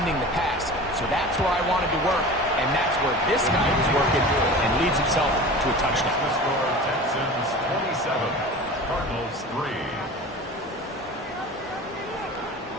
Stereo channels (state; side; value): normal; both; correlation 0.36